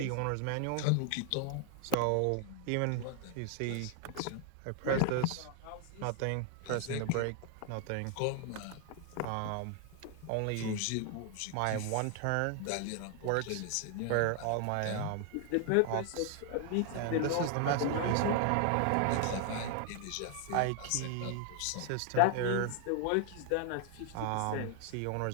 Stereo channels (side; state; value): both; different; correlation 0.00